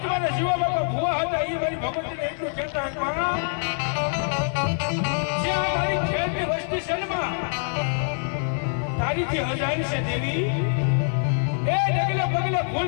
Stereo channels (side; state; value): right; silent; digital silence